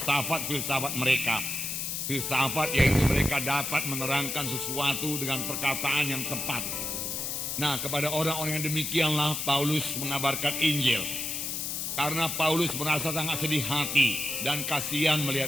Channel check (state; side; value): noise; left; hiss, 3 dB below the sound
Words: mereka. Filsafat yaitu mereka dapat menerangkan sesuatu dengan perkataan yang tepat. Nah, kepada orang-orang yang demikianlah Paulus mengabarkan Injil. Karena Paulus merasa sangat sedih hati dan kasihan